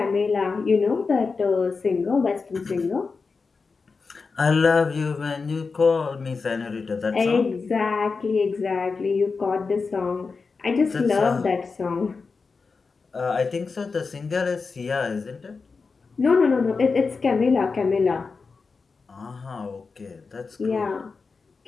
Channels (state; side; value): quieter; right; 4.6 dB